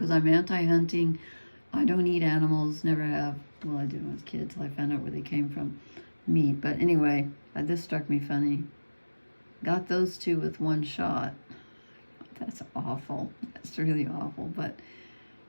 I'm anti-hunting. I don't eat animals, never have. Well, I did when I was a kid till I found out where they came from, meat. But anyway, this struck me funny. "Got those two with one shot." That's awful. That's really awful, but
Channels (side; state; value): both; inverted; correlation -1.00